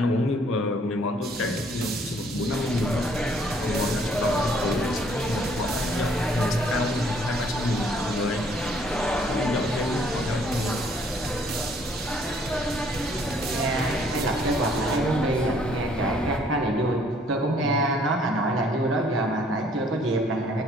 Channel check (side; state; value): both; normal; correlation 0.62